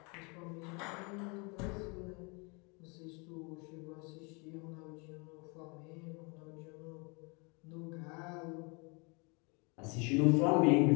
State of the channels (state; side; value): quieter; right; 31.4 dB